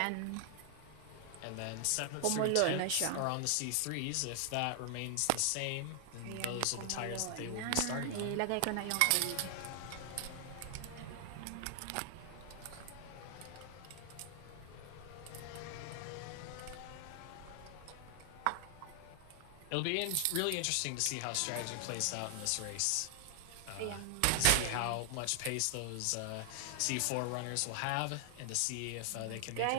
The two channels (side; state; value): both; different; correlation 0.00